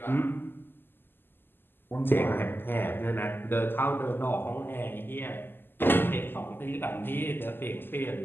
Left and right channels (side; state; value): right; late; 0.097 ms